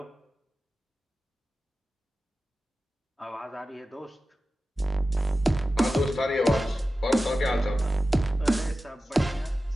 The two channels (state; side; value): normal; both; correlation 0.94